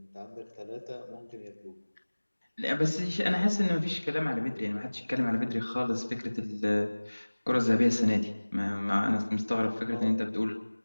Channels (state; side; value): inverted; both; correlation -1.00